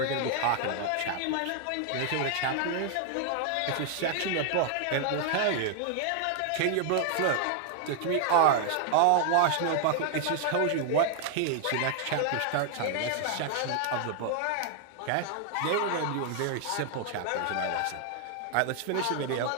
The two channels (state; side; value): different; both; correlation 0.00